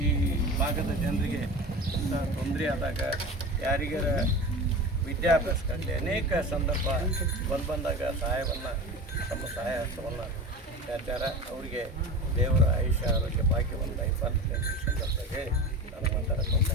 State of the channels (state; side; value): normal; both; correlation 0.31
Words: ಈ ಭಾಗದ ಜನರಿಗೆ ತೊಂದರೆ ಆದಾಗ, ಯಾರಿಗಾರ ವಿದ್ಯಾಭ್ಯಾಸಕ್ಕಾಗಲಿ ಅನೇಕ ಸಂದರ್ಭ ಬಂದಾಗ ಸಹಾಯವನ್ನು ತಮ್ಮ ಸಹಾಯ ಹಸ್ತವನ್ನು ಚಾಚಾರ. ಅವರಿಗೆ ದೇವರ ಆಯುಷ್ಯ ಆರೋಗ್ಯ ಭಾಗ್ಯವನ್ನು ದಯಪಾಲಿಸಿ ಸಂದರ್ಭದಾಗ ಹೇಳಿ